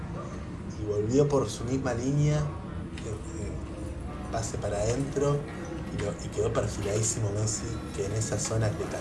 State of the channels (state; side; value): identical; both; correlation 1.00